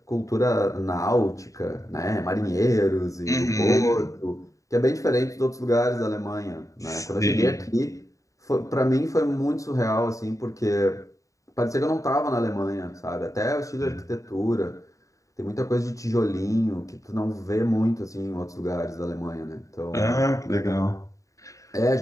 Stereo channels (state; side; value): late; right; 0.16 ms